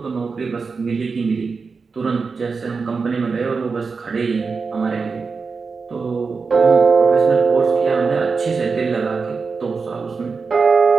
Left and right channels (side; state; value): left; quieter; 4.8 dB